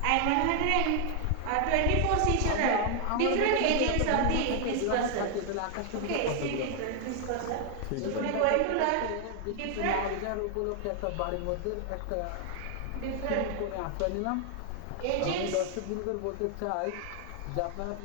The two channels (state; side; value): different; both; correlation 0.00